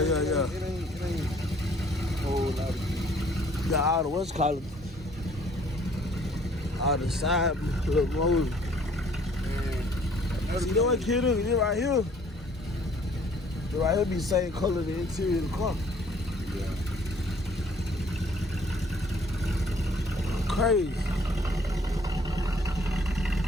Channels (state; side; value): normal; both; correlation 0.59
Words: It ain't a whole lot of shit. You got all the what's called all the side little motors. See, you know what kid is? This right here. This right here be the same color the interior of the car. Yeah. Crazy.